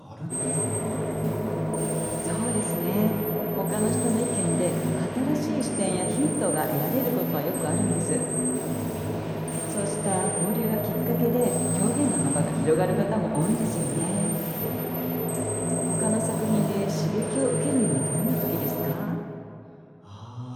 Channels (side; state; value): both; identical; correlation 1.00